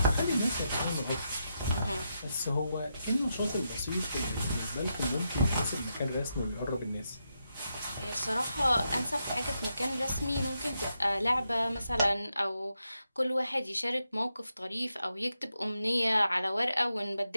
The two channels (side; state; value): both; inverted; correlation -0.84